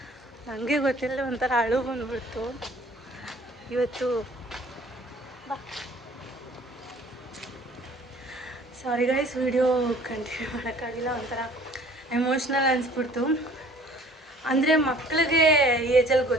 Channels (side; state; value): both; normal; correlation 0.53